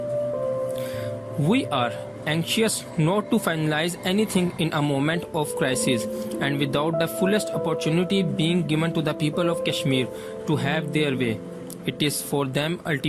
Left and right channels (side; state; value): both; identical; correlation 1.00